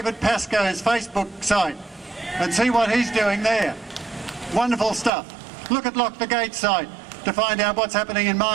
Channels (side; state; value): left; drops out; at 5.1 s